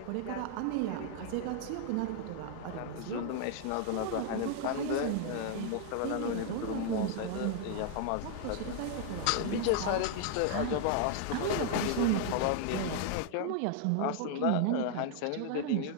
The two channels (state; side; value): different; both; correlation 0.00